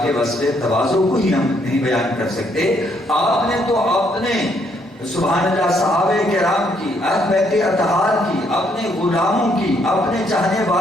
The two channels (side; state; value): both; normal; correlation 0.71